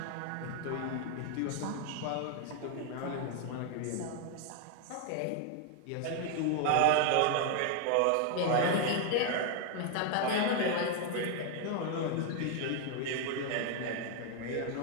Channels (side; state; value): both; different; correlation 0.01